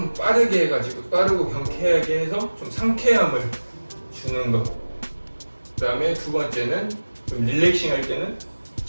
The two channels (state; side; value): inverted; both; correlation -1.00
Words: 빠르게 해가지고 빠르고 경쾌하게 해서 좀 상쾌함을 주는 것, 그 다음에 두 번째는 좀 릴렉싱 할 때는